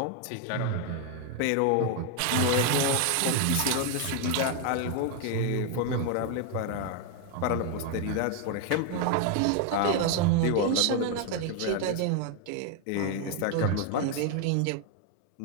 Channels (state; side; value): different; both; correlation 0.01